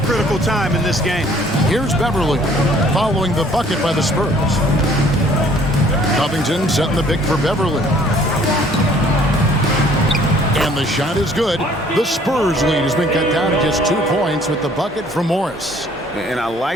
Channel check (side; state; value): both; normal; correlation 0.58